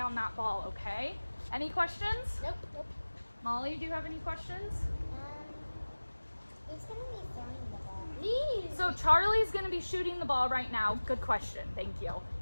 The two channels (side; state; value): both; inverted; correlation -1.00